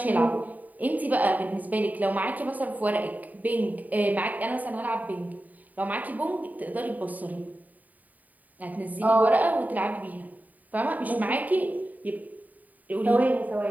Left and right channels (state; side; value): late; left; 0.078 ms